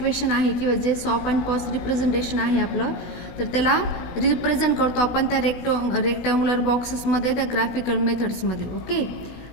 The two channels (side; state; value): right; late; 17 ms